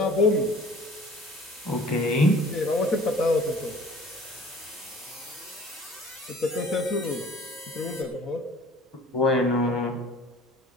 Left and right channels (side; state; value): both; normal; correlation 0.48